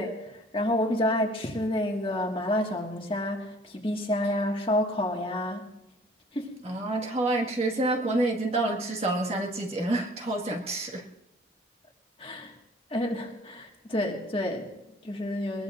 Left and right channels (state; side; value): normal; both; correlation 0.53